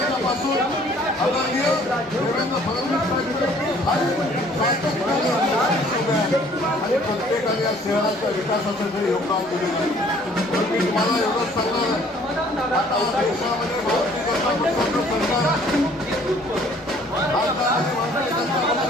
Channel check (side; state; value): both; normal; correlation 0.57